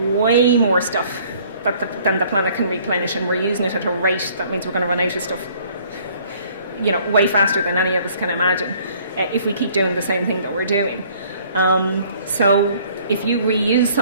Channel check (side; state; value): both; inverted; correlation -0.58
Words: way more stuff than the planet can replenish, and we're using it at a rate that means we're going to run out of stuff way faster than any of us can imagine if we keep doing the same thing that we're doing. So if you reuse